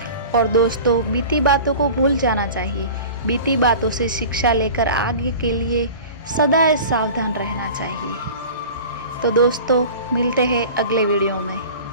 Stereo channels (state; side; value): inverted; both; correlation -0.39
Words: और दोस्तों, बीती बातों को भूल जाना चाहिए। बीती बातों से शिक्षा लेकर आगे के लिए सदा सावधान रहना चाहिए। तो दोस्तों, मिलते हैं अगले वीडियो में।